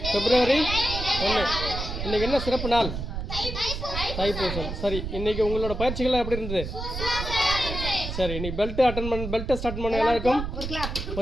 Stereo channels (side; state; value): right; noise; rumble, 5 dB below the sound